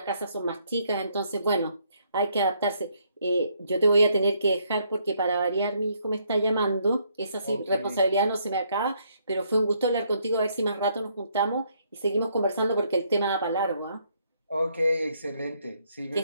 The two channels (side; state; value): both; inverted; correlation -0.71